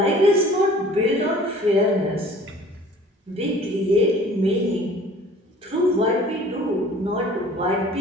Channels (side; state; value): both; normal; correlation 0.49